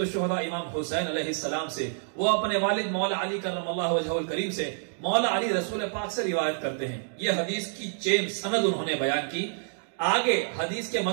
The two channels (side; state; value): left; silent; digital silence